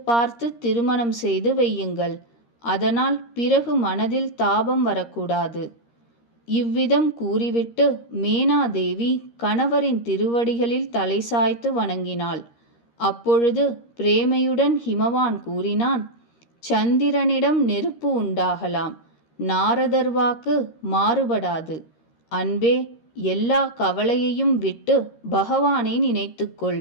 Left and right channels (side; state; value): right; late; 13 ms